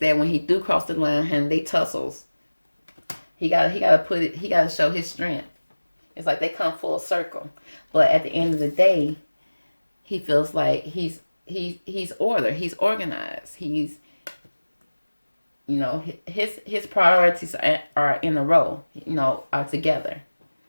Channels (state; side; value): inverted; both; correlation -1.00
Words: when he do cross the line and they tussles, he gotta show his strength. It's like they come full circle, but at the end of the day, he feels like he's order. He's organized. He's, his priorities are in a row. Are together.